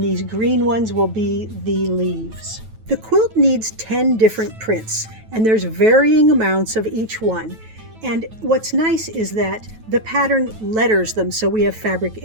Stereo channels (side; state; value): left; late; 9.2 ms